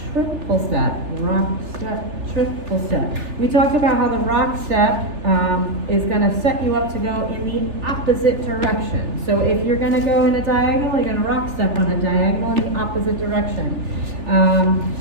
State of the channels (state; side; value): late; left; 3.4 ms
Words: triple step, rock, step, triple step. We talked about how the rock step is going to set you up to go in the opposite direction. So if you're going to go in a diagonal, you're going to rock step on a diagonal in the opposite direction.